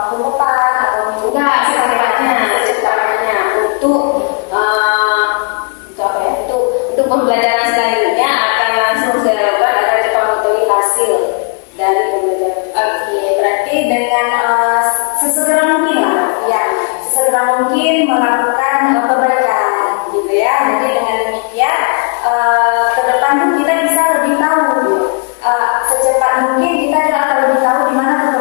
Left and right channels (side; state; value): right; quieter; 37.2 dB